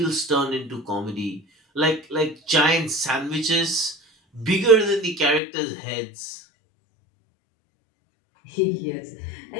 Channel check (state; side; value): drops out; right; at 5.4 s